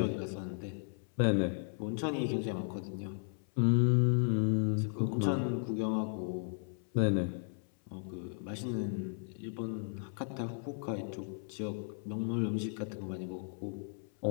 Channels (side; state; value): right; silent; 54 dB below the other